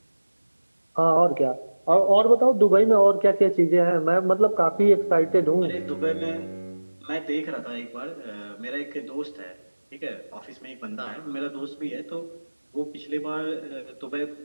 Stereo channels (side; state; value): both; inverted; correlation -1.00